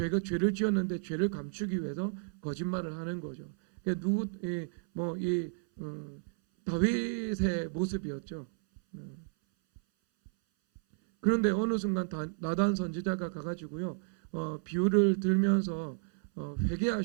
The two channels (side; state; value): left; silent; 56 dB below the other